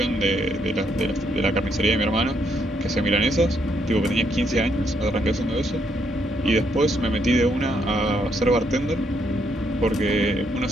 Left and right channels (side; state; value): both; normal; correlation 0.74